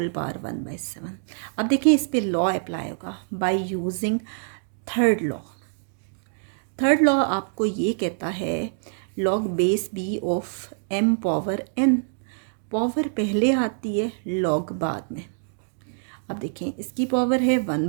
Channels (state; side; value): silent; left; digital silence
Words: पावर 1/7। अब देखिए इस पे लॉ अप्लाई होगा by using third law. Third law आपको ये कहता है log base B of m power n, power पहले आती है लॉग बाद में। अब देखें इसकी पावर है